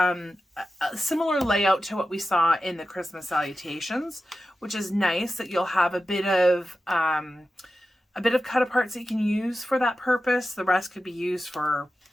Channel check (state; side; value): normal; both; correlation 0.92